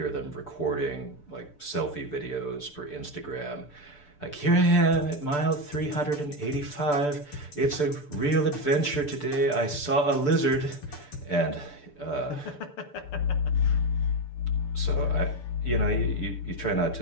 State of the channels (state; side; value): late; right; 6.8 ms